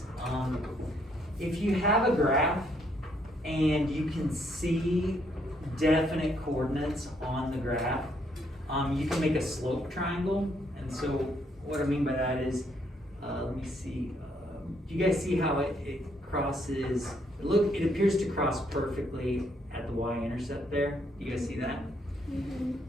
If you have a graph and you can see definite coordinates on the graph, you can make a slope triangle. And so what I mean by that is, let me see. Do you guys see how it crosses? It appears to cross perfectly at the y-intercept there. You guys see that? Mm-hmm.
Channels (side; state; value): both; normal; correlation 0.71